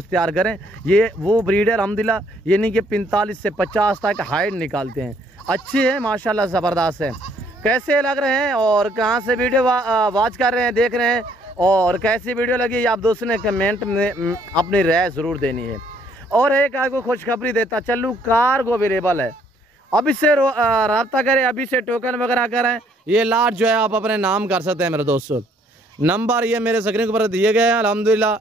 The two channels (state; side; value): normal; both; correlation 0.65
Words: तैयार करें ये वो ब्रीड है अल्हम्दुलिल्लाह यानी कि 45 से 50 तक हाइट निकालते हैं। अच्छे हैं माशाल्लाह, ज़बरदस्त है। कैसे लग रहे हैं और कहाँ से वीडियो वॉच कर रहे हैं देख रहे हैं और कैसी वीडियो लगी आप दोस्तों ने कमेंट में अपनी राय ज़रूर देनी है। और एक आपको खुशखबरी देता चलूँ, कार्गो अवेलेबल है, अभी से रब्ता करें, अभी से टोकन वगैरह करें। ये लाट जो है आप अपने नाम कर सकते हैं मेरे दोस्तों। नंबर ये मेरे स्क्रीन के ऊपर दिए गए हैं अल्हम्दुलिल्लाह,